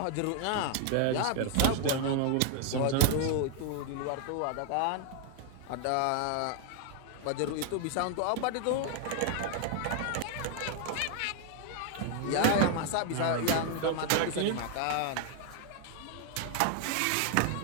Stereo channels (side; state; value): both; different; correlation 0.00